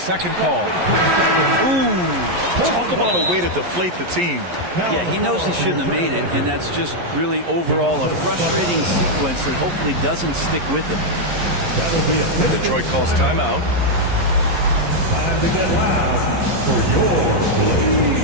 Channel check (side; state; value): left; late; 11 ms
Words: call. Ooh, talk about a way to deflate the team. Yeah, he knows he shouldn't have made it, and that's just really overall a frustrating sequence that hopefully doesn't stick with him. Detroit calls timeout. Time to get loud for your